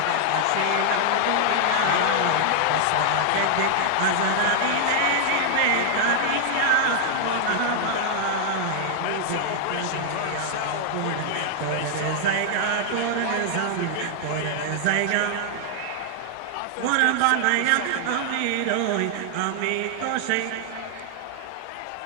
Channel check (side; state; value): both; different; correlation 0.00